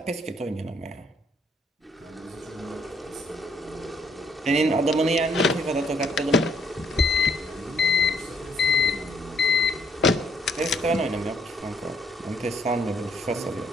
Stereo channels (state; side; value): normal; both; correlation 0.67